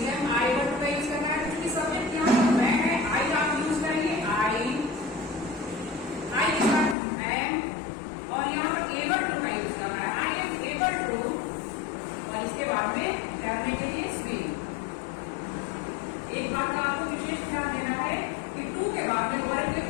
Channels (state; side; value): drops out; right; at 7.0 s